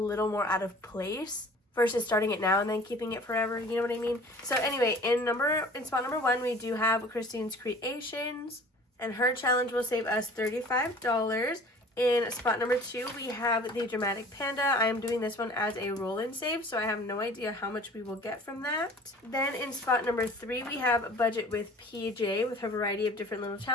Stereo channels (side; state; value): both; normal; correlation 0.46